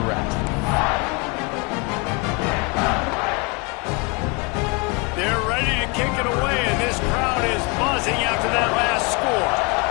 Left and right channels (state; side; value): quieter; right; 29.6 dB